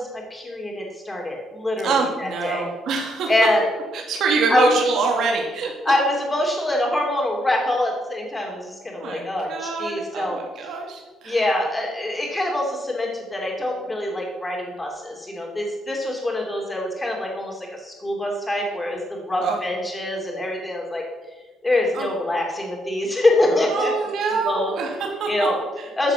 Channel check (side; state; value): both; normal; correlation 0.76